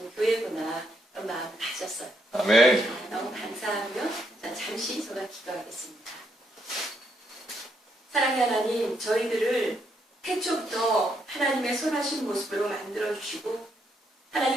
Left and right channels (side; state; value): both; normal; correlation 0.76